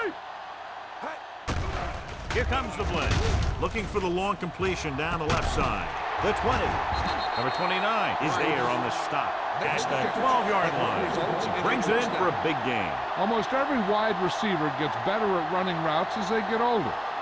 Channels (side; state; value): both; identical; correlation 1.00